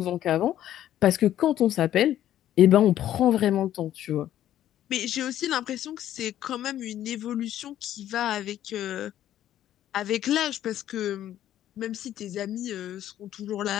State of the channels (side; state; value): right; quieter; 12.0 dB